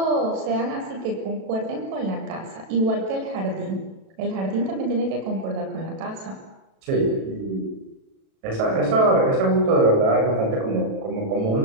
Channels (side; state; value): left; late; 36 ms